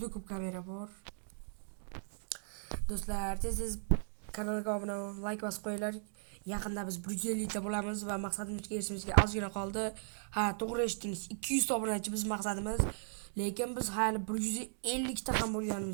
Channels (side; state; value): left; silent; digital silence